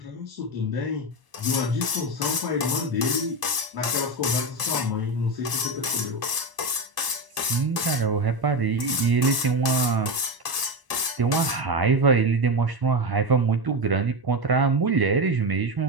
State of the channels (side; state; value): left; late; 1.1 ms